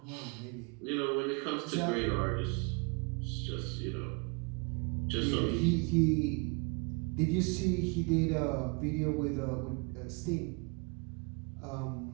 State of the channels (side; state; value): left; quieter; 32.3 dB